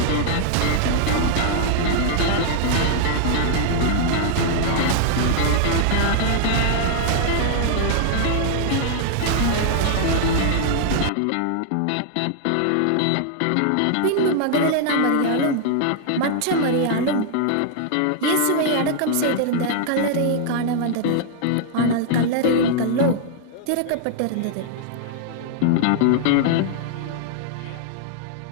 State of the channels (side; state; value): both; different; correlation -0.01